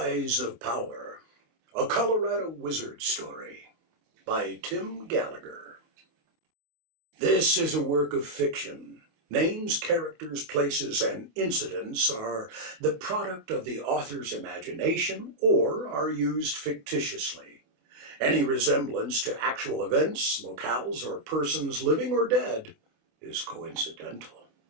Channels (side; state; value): left; late; 28 ms